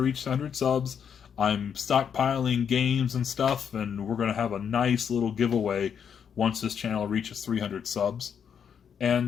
100 subs, I'm stockpiling games and stuff, and we're going to have a nice little giveaway once this channel reaches 300 subs.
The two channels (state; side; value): quieter; right; 7.7 dB